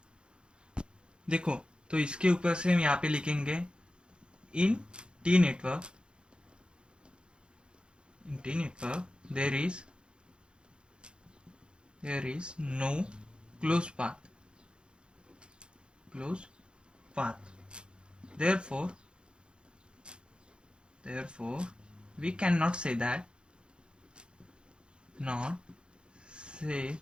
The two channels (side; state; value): left; late; 0.053 ms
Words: देखो तो इसके ऊपर से हम यहाँ पे लिखेंगे in T network, there is no closed path. Therefore we cannot say that